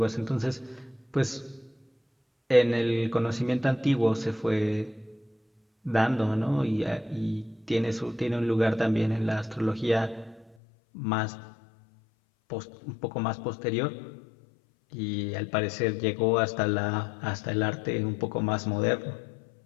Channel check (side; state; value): right; drops out; at 10.6 s